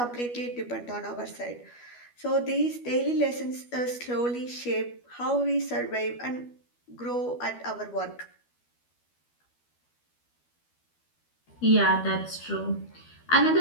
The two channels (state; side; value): late; right; 12 ms